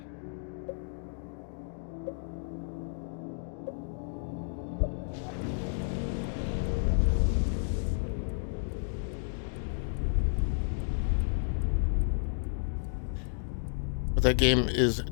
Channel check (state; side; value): silent; right; digital silence